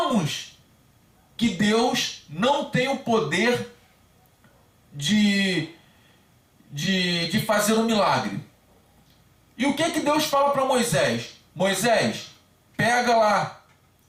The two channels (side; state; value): both; identical; correlation 1.00